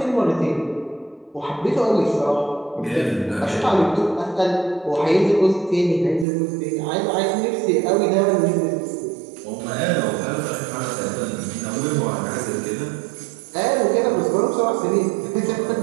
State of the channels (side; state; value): left; drops out; at 6.2 s